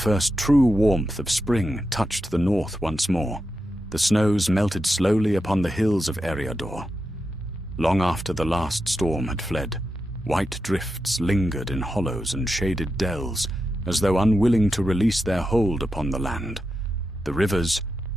true warmth of spring touched the north once more. The snows melted slowly upon the hills of Eriador. Long after the last storm had fled, white drifts lingered in hollows and shaded dells, as though unwilling to release their hold upon the land. The rivers,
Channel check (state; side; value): normal; both; correlation 0.88